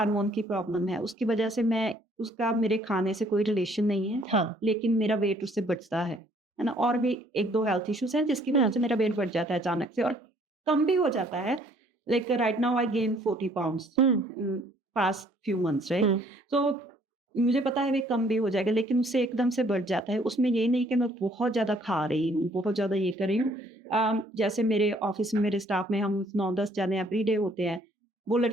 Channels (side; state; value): both; normal; correlation 0.61